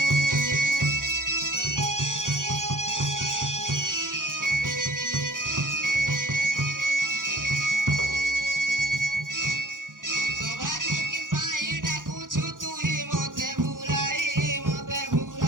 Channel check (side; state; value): left; late; 0.89 ms